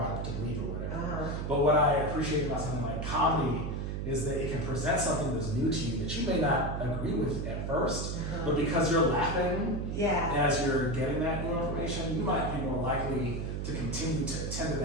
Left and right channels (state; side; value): noise; right; hum, 3 dB below the sound